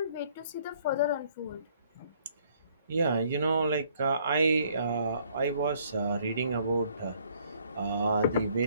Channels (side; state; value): both; inverted; correlation -0.63